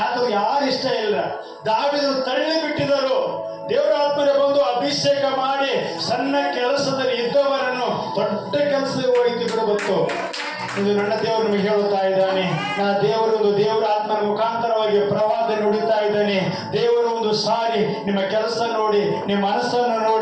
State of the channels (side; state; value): both; identical; correlation 1.00